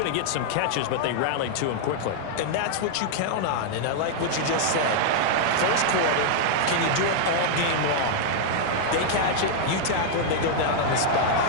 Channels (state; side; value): different; both; correlation -0.01